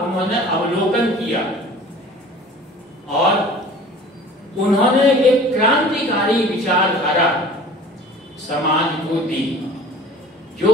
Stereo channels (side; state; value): both; normal; correlation 0.44